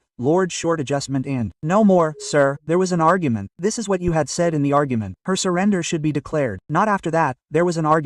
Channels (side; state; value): both; identical; correlation 1.00